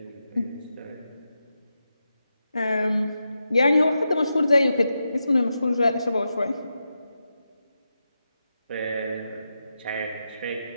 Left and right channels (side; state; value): both; inverted; correlation -0.88